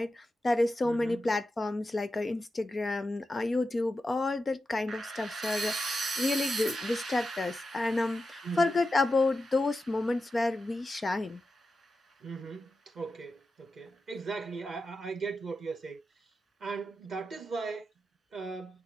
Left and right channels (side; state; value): both; normal; correlation 0.90